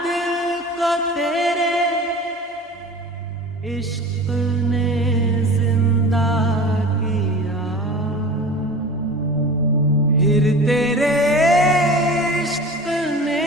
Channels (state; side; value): normal; both; correlation 0.37